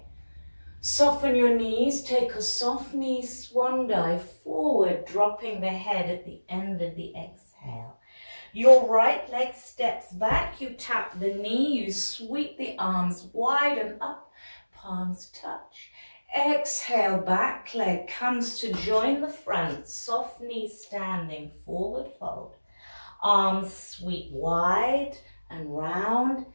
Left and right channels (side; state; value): both; inverted; correlation -1.00